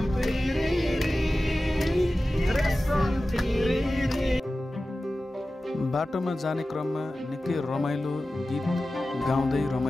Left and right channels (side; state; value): both; normal; correlation 0.95